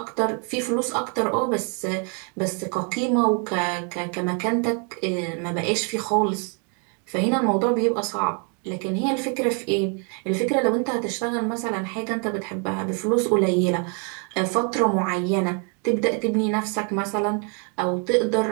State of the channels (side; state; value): left; quieter; 38.7 dB